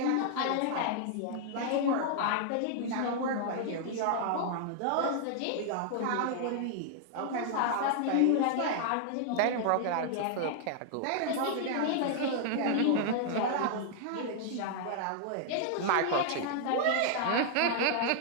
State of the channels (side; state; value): both; different; correlation -0.01